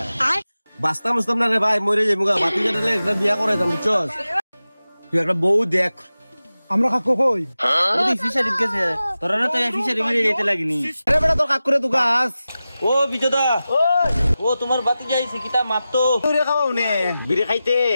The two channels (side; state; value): both; inverted; correlation -0.94